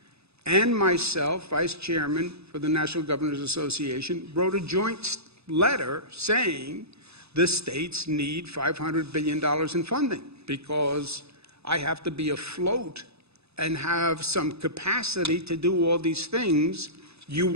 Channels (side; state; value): left; late; 0.79 ms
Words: and myself, vice chairman for the National Governors Association, wrote a joint letter saying the states need $500 billion in funding because I have to be afloat and have some capacity to do all these things you